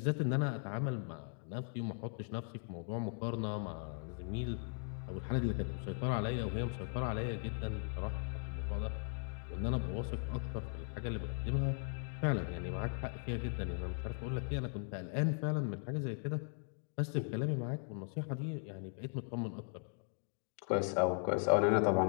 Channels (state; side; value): silent; right; 52 dB below the other